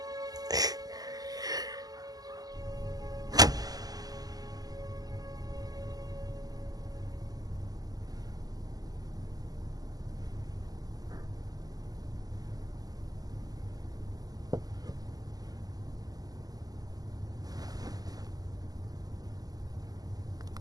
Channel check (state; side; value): late; left; 0.18 ms